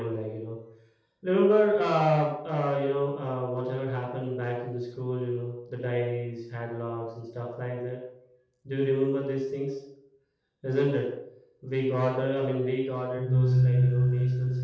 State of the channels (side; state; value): both; identical; correlation 1.00